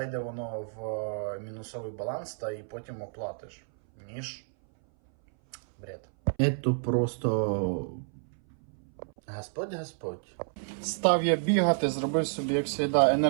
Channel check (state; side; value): silent; left; 58 dB below the other